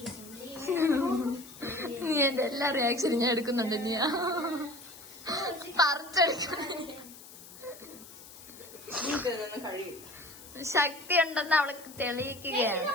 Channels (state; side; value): noise; left; hiss, 18 dB below the sound